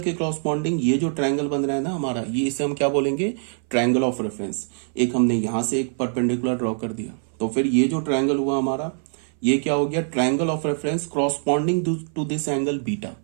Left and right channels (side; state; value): left; silent; 60 dB below the other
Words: के क्रॉसपॉन्डिंग ये जो ट्रायंगल बन रहा है ना हमारा, ये इसे हम क्या बोलेंगे, ट्रायंगल ऑफ रेफरेंस। एक हमने यहां से एक परपेंडिकुलर ड्रॉ कर दिया, तो फिर ये जो ट्रायंगल हुआ हमारा, ये क्या हो गया, triangle of reference corresponding to this angle beta.